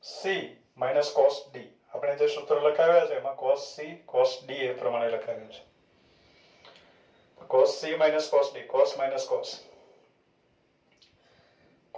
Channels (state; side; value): identical; both; correlation 1.00